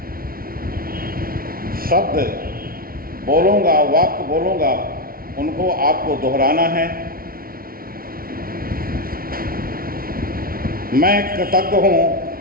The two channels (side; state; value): left; late; 0.43 ms